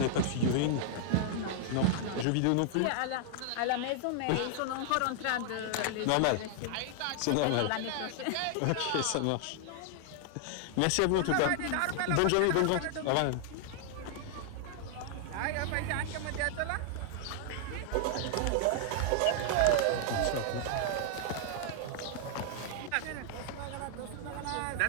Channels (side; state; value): both; different; correlation 0.00